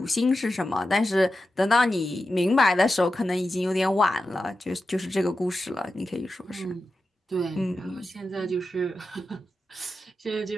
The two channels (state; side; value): normal; both; correlation 0.91